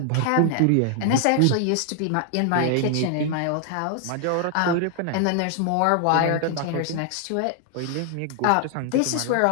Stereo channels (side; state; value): both; different; correlation 0.00